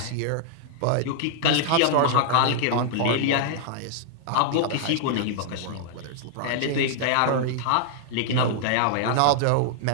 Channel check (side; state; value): both; different; correlation -0.01